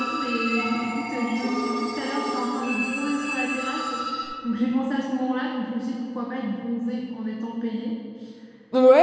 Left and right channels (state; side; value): identical; both; correlation 1.00